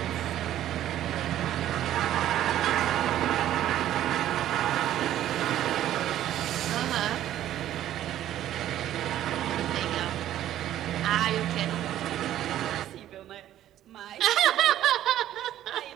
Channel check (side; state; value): left; quieter; 12.4 dB